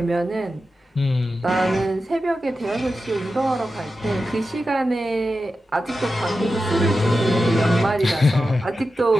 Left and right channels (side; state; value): both; normal; correlation 0.91